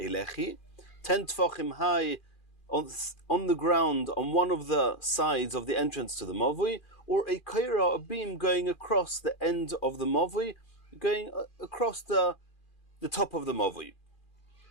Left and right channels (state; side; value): late; right; 2.4 ms